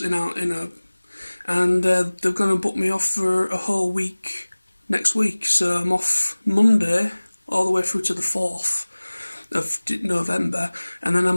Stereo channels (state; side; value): inverted; both; correlation -1.00